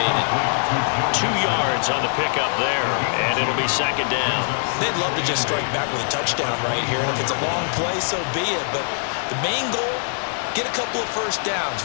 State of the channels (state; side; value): silent; right; digital silence